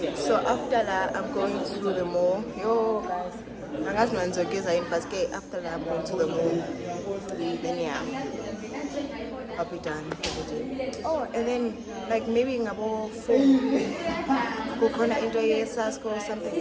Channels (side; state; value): both; identical; correlation 1.00